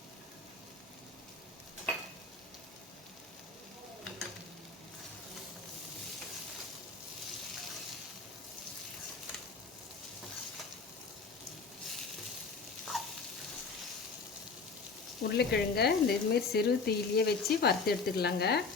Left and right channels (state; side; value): quieter; right; 4.5 dB